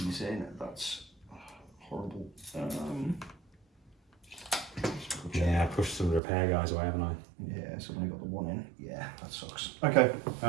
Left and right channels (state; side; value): drops out; left; at 6.2 s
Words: in. That's horrible. Yeah, I pushed some repair guys away, haven't I? Yeah, so I've only got the one in. Yeah, that sucks. Okay,